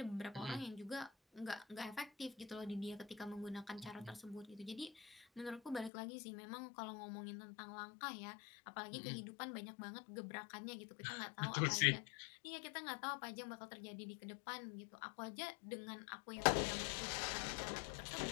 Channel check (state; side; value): drops out; right; at 5.9 s